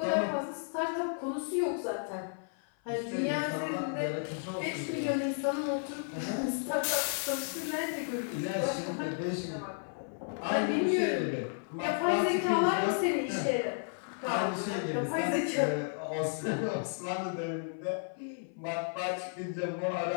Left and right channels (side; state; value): right; silent; 56 dB below the other